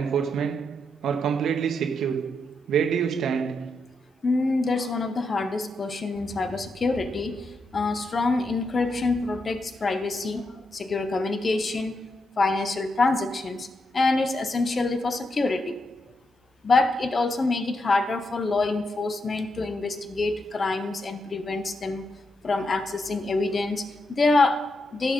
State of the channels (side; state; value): both; normal; correlation 0.83